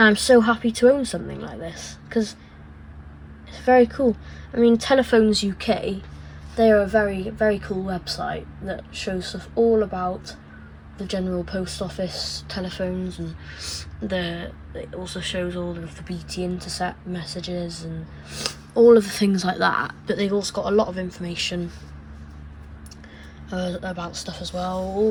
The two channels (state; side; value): identical; both; correlation 1.00